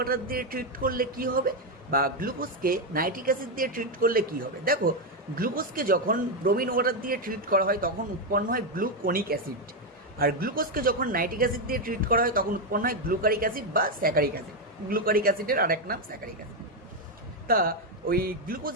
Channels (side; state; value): both; normal; correlation 0.05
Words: দিয়ে ট্রিট করলে কি হবে, বা গ্লুকোজকে নাইট্রিক অ্যাসিড দিয়ে ট্রিট করলে কি হবে। দেখো, গ্লুকোজকে যখন ব্রোমিন ওয়াটার দিয়ে ট্রিট করা হয় তখন উৎপন্ন হয় গ্লুকোনিক অ্যাসিড, আর গ্লুকোজকে যখন নাইট্রিক অ্যাসিড দিয়ে ট্রিট করা হয় তখন উৎপন্ন হয় গ্লুকারিক অ্যাসিড বা স্যাকারিক অ্যাসিড। গ্লুকারিক অ্যাসিডের আরেক নাম স্যাকারিক অ্যাসিড। তা ওই